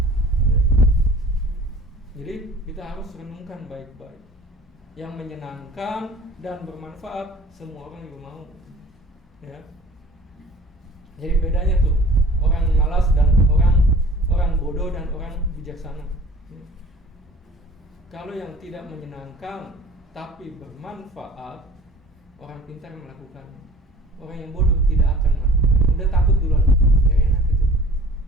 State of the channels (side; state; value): both; normal; correlation 0.46